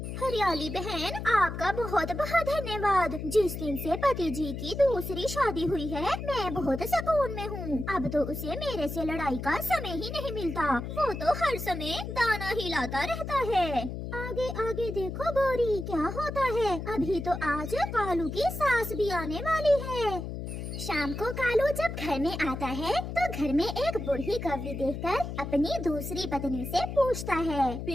हरियाली बहन, आपका बहुत बहुत धन्यवाद। जिस दिन से पति जी की दूसरी शादी हुई है मैं बहुत सुकून में हूँ। अब तो उसे मेरे से लड़ाई का समय ही नहीं मिलता। वो तो हर समय दाना ही लाता रहता है। आगे आगे देखो गोरी, क्या होता है। अभी तो आज कालू की सास भी आने वाली है। शाम को कालू जब घर में आता है तो घर में एक बूढ़ी कौवी देखकर अपनी दूसरी पत्नी से पूछता है,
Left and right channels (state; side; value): noise; left; hum, 6 dB below the sound